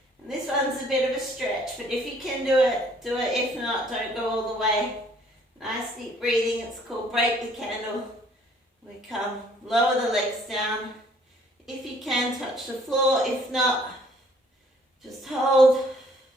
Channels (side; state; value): both; normal; correlation 0.60